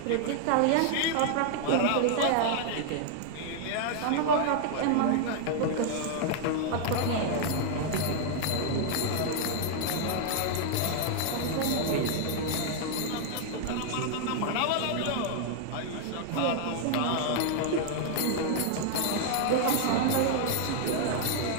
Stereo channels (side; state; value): both; different; correlation 0.00